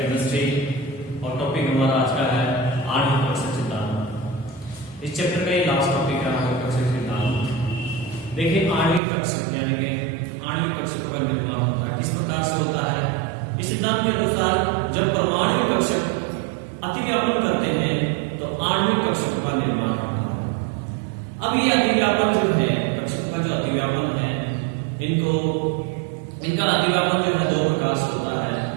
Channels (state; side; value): drops out; left; at 9.0 s